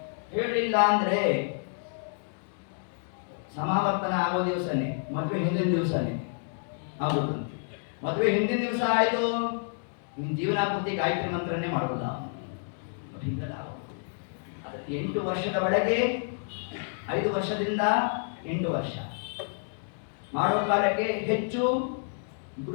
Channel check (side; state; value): right; silent; digital silence